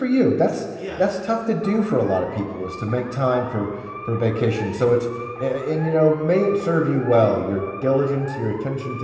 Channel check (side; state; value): both; identical; correlation 1.00